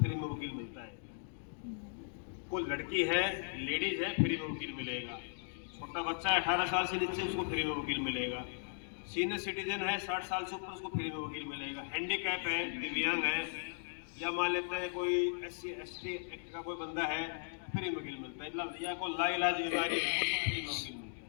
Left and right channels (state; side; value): silent; right; digital silence